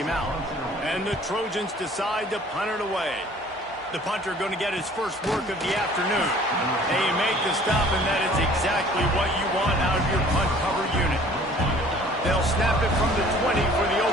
him out. And the Trojans decide to punt it away. The punter going to get his first work of the afternoon. They make the stop, and that is exactly what you want out of your punt cover unit. They'll snap it from the 20 for the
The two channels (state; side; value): normal; both; correlation 0.52